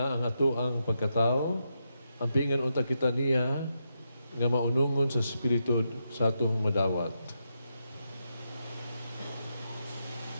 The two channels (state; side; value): inverted; both; correlation -0.84